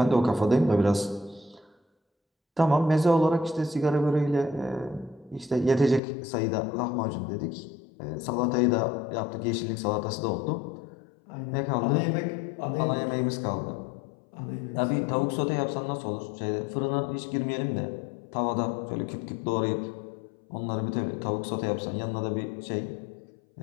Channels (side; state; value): right; drops out; at 6.0 s